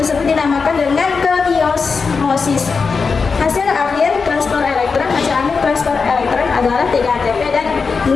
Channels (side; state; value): right; quieter; 5.0 dB